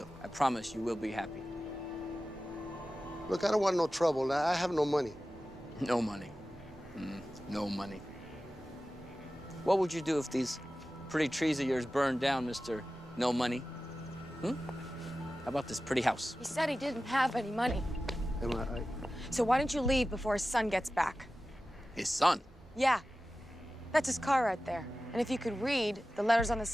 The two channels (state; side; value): normal; both; correlation 0.95